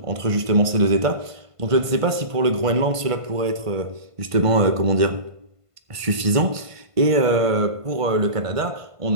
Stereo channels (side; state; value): left; late; 1.5 ms